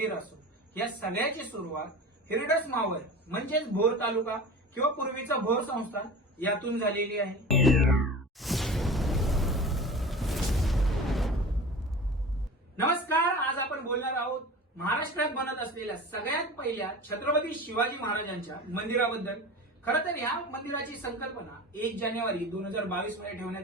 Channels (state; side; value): normal; both; correlation 0.34